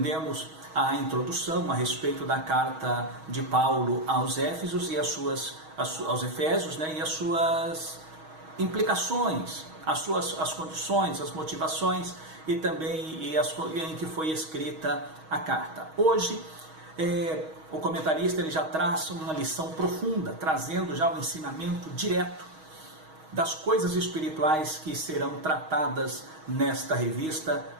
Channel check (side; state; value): left; late; 6.3 ms